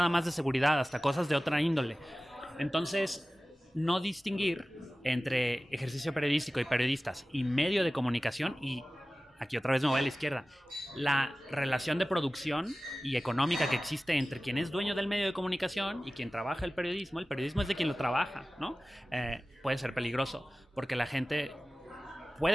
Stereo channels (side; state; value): both; normal; correlation 0.96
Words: más de seguridad, hasta cosas de otra índole. Entonces, no distinguir entre ejercicio periodístico y periodistas y medio de comunicación, y aquí otra vez me voy a la izquierda, la relación de producción y económica que existe entre quien es dueño del medio de comunicación y quien trabaja el periodismo es de quien lo trabaja, ¿no? Puede ser peligroso, porque la gente